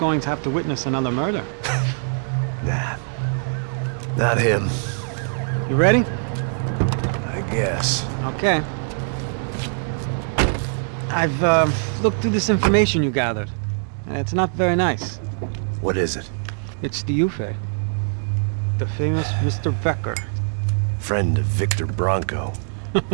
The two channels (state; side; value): silent; left; digital silence